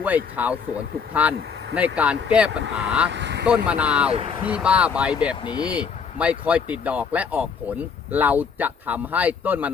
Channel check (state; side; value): quieter; right; 6.1 dB